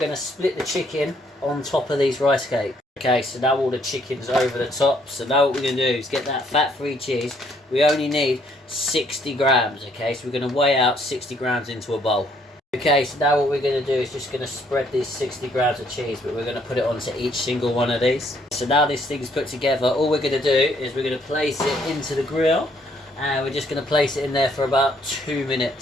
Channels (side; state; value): both; normal; correlation 0.67